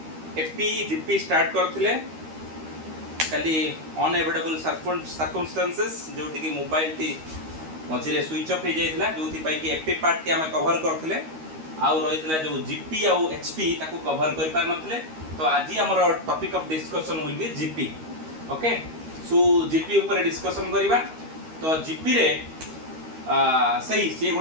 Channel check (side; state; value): left; late; 13 ms